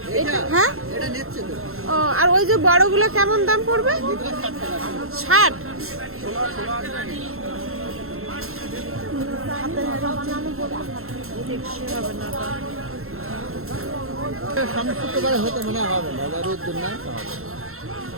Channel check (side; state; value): left; late; 0.62 ms